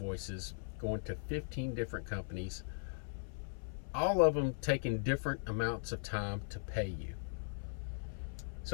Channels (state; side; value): silent; right; 52 dB below the other